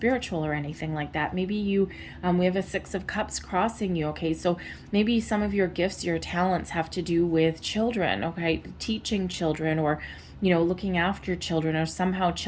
or anything like that. Maybe you, we have a Six of Cups crossing you. Okay, so maybe some of your gifts, your talents have to do with children. Okay, teaching children, or you know, looking after children, or somehow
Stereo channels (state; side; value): identical; both; correlation 1.00